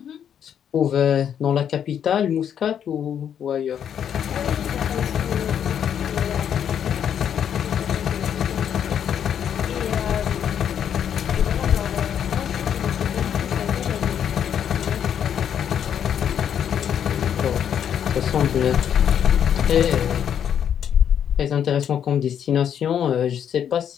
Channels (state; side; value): quieter; right; 8.9 dB